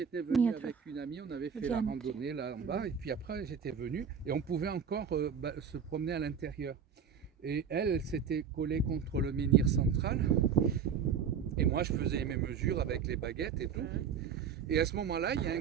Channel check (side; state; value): left; quieter; 7.0 dB